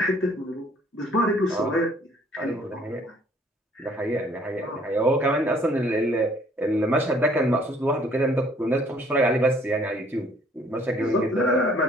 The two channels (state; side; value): normal; both; correlation 0.59